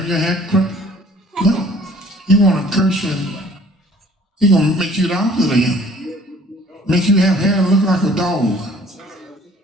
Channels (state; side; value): normal; both; correlation 0.54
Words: your hair crooked. No. He wanna curse you and he gonna make you the opposite of him. Make you have hair look like a dog,